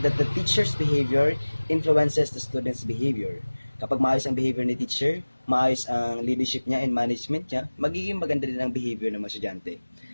the teacher's behavior influences the student's behavior. Kapag maayos ang behavior ni teacher, maayos ang leadership niya and management niya, magiging maganda din ang behavior ng mga estudyante.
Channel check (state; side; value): inverted; both; correlation -1.00